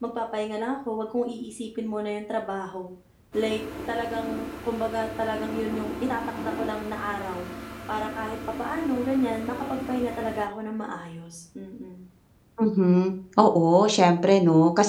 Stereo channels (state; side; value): identical; both; correlation 1.00